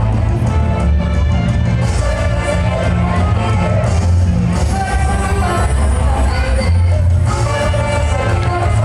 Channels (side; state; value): both; identical; correlation 1.00